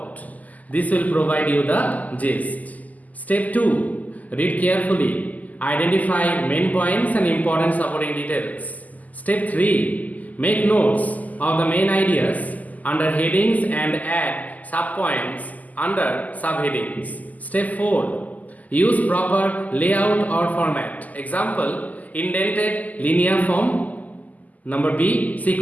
This will provide you the gist. Step 2. Read carefully. Identify main points and important supporting details. Step 3. Make notes of the main ideas under headings and add subpoints under subheadings. Step 4. Use proper layout or format. Example, indented linear form. Number B,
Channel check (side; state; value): right; late; 0.078 ms